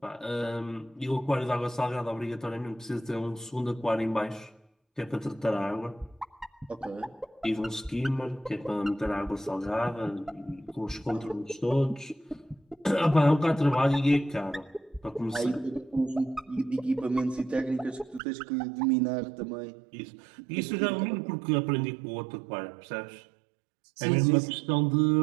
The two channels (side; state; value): left; drops out; at 18.2 s